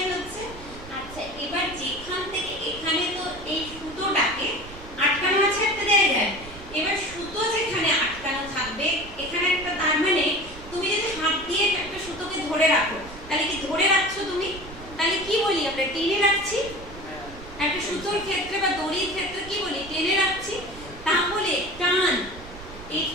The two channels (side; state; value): right; noise; rumble, 16 dB below the sound